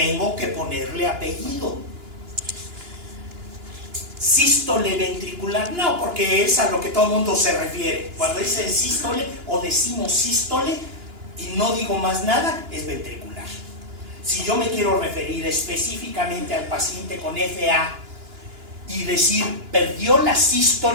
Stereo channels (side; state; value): left; late; 2.9 ms